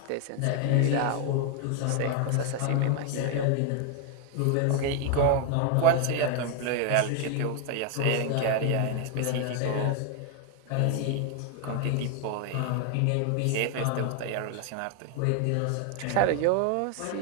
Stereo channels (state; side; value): different; both; correlation 0.00